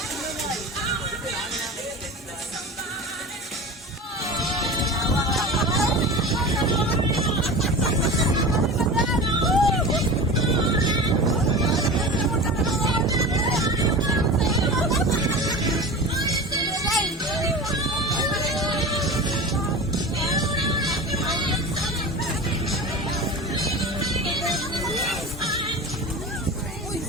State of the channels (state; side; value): normal; both; correlation 0.31